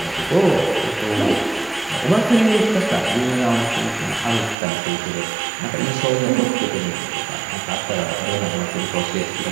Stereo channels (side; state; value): left; drops out; at 4.5 s